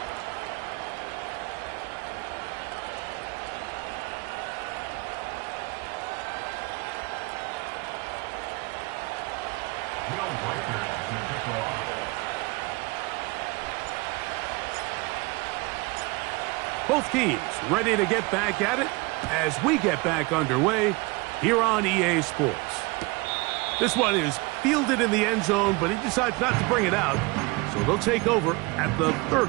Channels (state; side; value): quieter; left; 25.6 dB